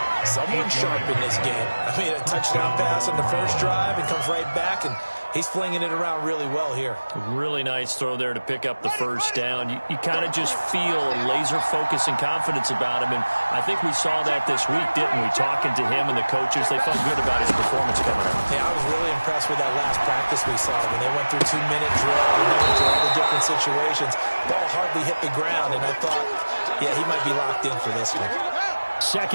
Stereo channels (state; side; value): inverted; both; correlation -1.00